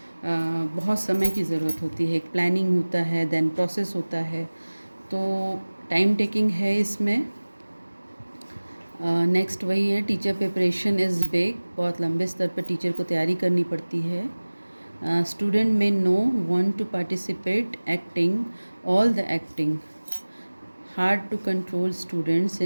बहुत समय की ज़रूरत होती है। एक प्लानिंग होता है, देन प्रोसेस होता है, तो टाइम टेकिंग है इसमें। नेक्स्ट वही है, टीचर प्रिपरेशन इज़ बिग। बहुत लंबे स्तर पर टीचर को तैयारी करनी पड़ती है। स्टूडेंट में no want to participate acting all the acting. Hard to control student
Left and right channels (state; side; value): inverted; both; correlation -1.00